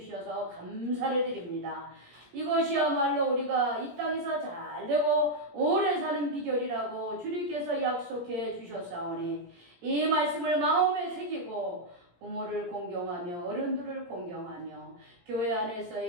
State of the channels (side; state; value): left; late; 17 ms